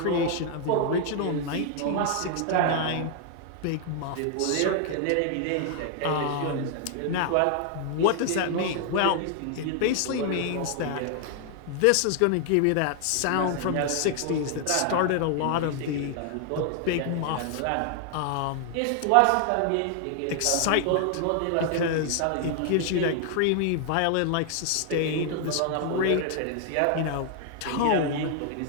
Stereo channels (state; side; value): different; both; correlation 0.00